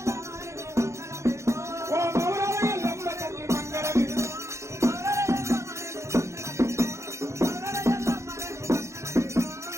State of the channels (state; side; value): late; left; 0.14 ms